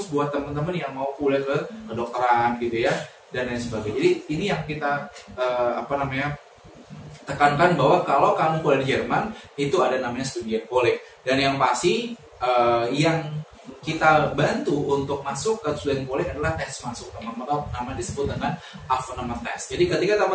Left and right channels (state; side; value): identical; both; correlation 1.00